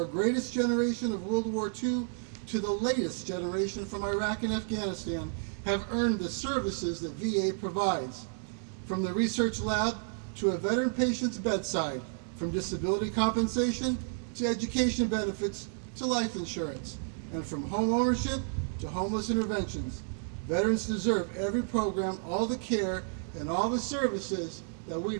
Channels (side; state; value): left; silent; digital silence